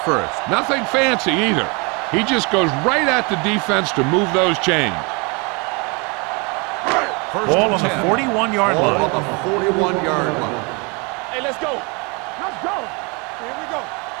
Nothing fancy either. He just goes right at the defense to move those chains. Ball on the 41-yard Ball line. on the 41-yard line. Hey, let's go. Let's go. Here we go.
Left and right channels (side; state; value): left; quieter; 30.5 dB